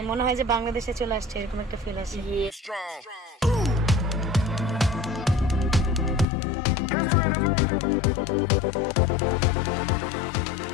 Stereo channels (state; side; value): drops out; right; at 6.2 s